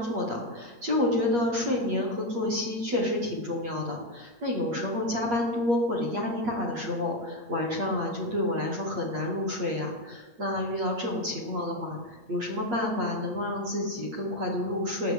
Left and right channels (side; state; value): left; late; 8.5 ms